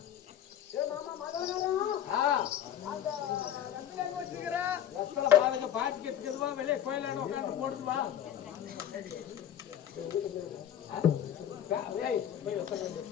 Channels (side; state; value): right; quieter; 10.3 dB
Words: பாட்டிக்கு வெளியே கோயிலான உட்காந்து போடுதுவா.